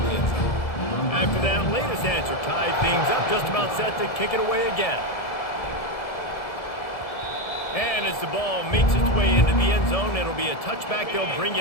the end zone. After that latest answer tied things up, just about set to kick it away again. And as the ball makes its way into the end zone, it'll be a touchback. They'll bring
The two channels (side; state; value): right; late; 1.7 ms